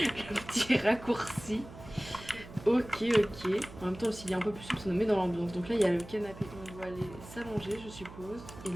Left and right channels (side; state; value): right; noise; hum, 16 dB below the sound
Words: petit raccourci. Ok, ok. En même temps, s'il y a un peu plus souple, ça nous met dans l'ambiance. Donc là, il y a le canapé. On doit aller s'allonger, je suppose. Et